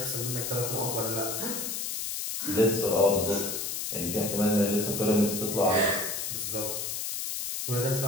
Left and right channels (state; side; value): noise; left; hiss, 3 dB below the sound